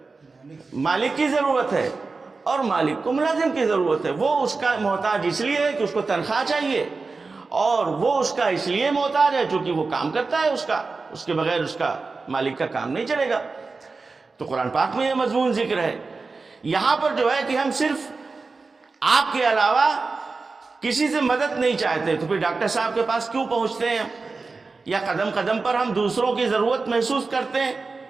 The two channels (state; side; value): quieter; left; 4.1 dB